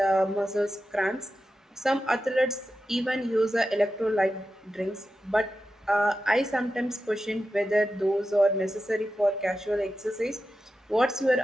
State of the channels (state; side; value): normal; both; correlation 0.91